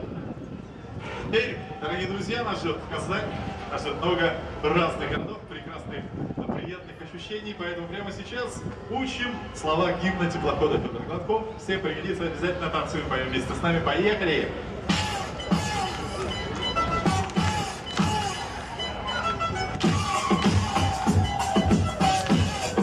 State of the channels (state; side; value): identical; both; correlation 1.00